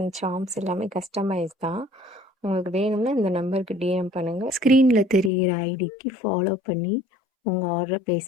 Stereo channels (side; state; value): right; drops out; at 5.3 s